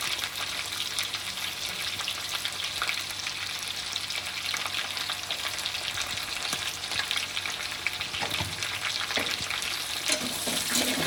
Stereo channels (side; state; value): both; identical; correlation 1.00